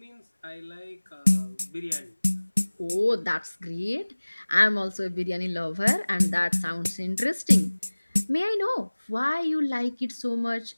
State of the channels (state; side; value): inverted; both; correlation -1.00